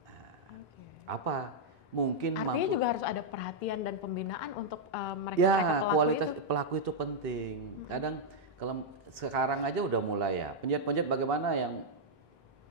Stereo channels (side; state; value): both; normal; correlation -0.05